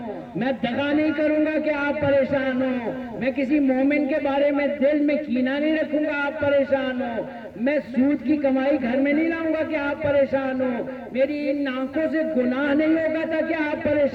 میں دغا نہیں کروں گا کہ آپ پریشان ہو، میں کسی مومن کے بارے میں دل میں کینہ نہیں رکھوں گا آپ پریشان ہو، میں سود کی کمائی گھر میں نہیں لاؤں گا کہ آپ پریشان ہو، میری ان آنکھوں سے گناہ نہیں ہوگا تھا کہ آپ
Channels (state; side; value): identical; both; correlation 1.00